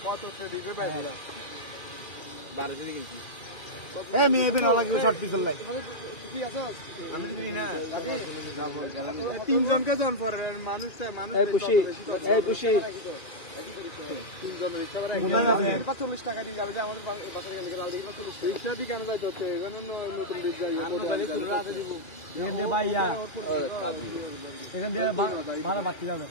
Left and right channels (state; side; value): late; right; 2.4 ms